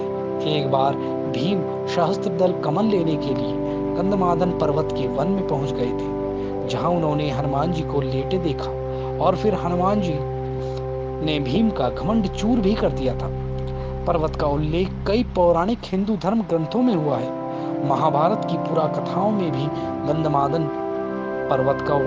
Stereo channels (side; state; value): both; identical; correlation 1.00